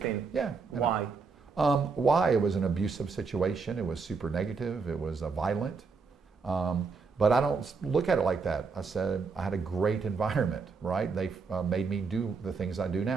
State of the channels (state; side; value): quieter; left; 4.9 dB